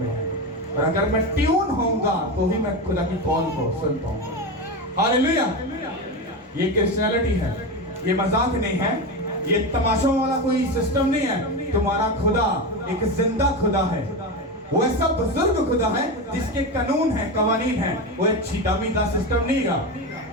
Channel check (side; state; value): both; normal; correlation 0.19